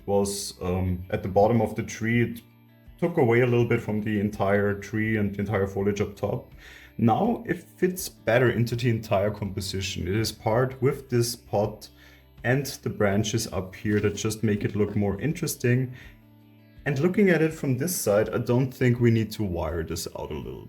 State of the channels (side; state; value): both; identical; correlation 1.00